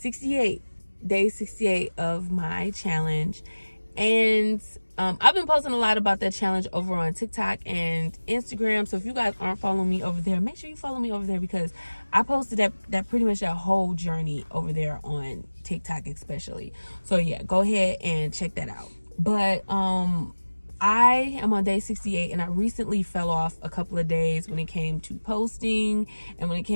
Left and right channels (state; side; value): inverted; both; correlation -1.00